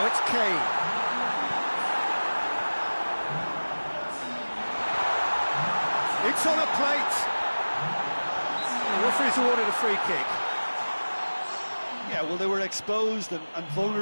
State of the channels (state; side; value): inverted; both; correlation -1.00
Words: it's Kane. It's on a plate. The referee's awarded a free kick. Yeah, well, they were exposed and